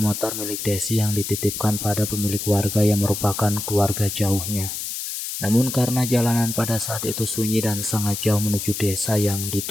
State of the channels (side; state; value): left; noise; hiss, 5 dB below the sound